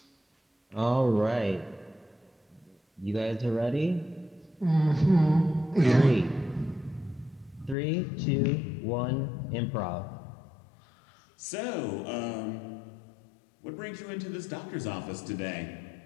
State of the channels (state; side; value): drops out; right; at 7.8 s